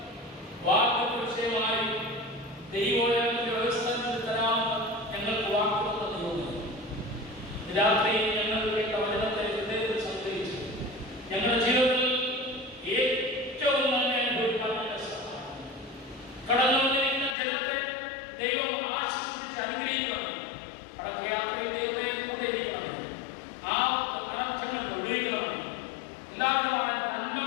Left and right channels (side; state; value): right; drops out; at 17.4 s